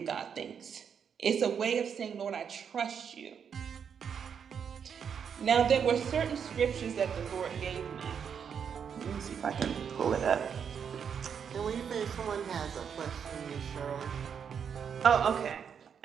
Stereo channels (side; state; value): left; quieter; 7.3 dB